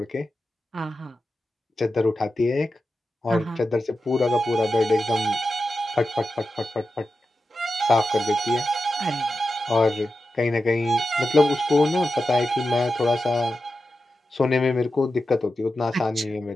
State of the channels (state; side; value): normal; both; correlation 0.91